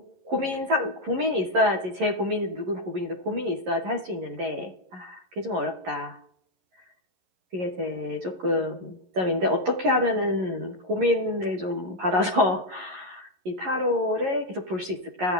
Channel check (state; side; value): late; left; 11 ms